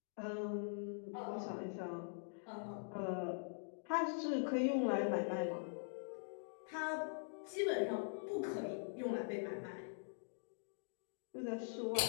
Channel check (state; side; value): silent; right; digital silence